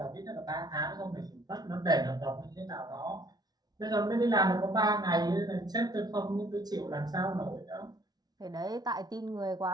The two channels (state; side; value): late; left; 0.19 ms